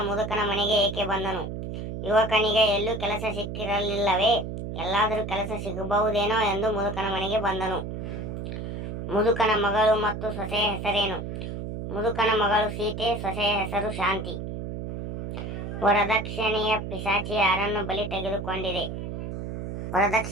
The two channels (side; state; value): right; noise; hum, 6 dB below the sound